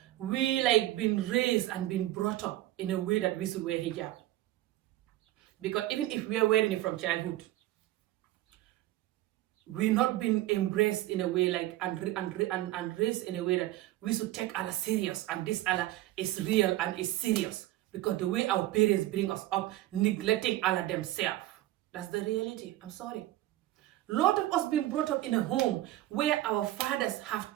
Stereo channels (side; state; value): left; quieter; 15.9 dB